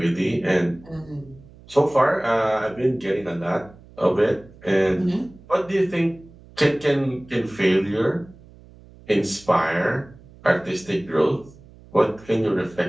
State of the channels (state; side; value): noise; right; hum, 23 dB below the sound